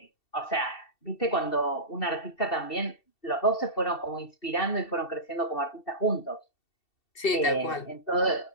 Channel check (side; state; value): right; late; 2.7 ms